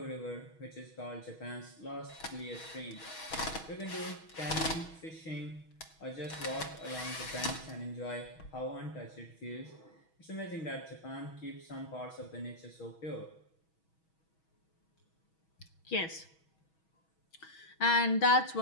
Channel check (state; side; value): late; right; 6.2 ms